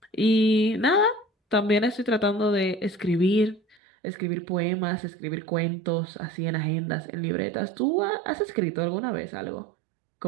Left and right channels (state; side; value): drops out; left; at 3.8 s